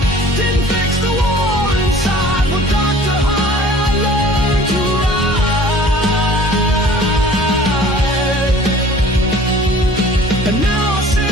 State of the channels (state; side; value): normal; both; correlation 0.48